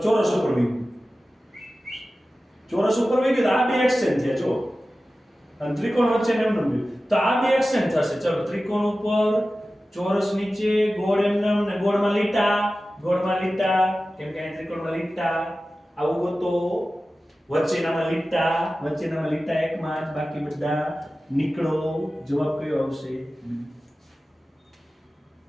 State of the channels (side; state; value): both; normal; correlation 0.95